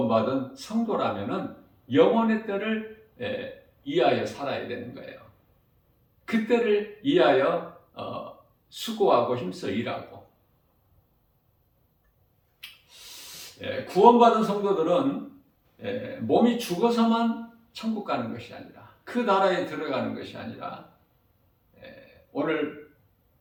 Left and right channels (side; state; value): both; identical; correlation 1.00